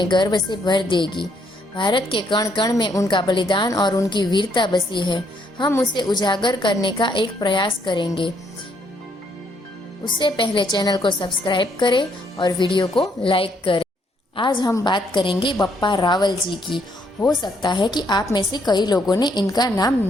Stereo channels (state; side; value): normal; both; correlation 0.71